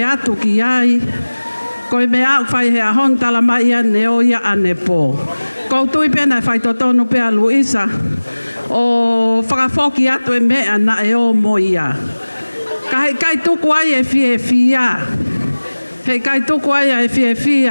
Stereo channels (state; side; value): inverted; both; correlation -1.00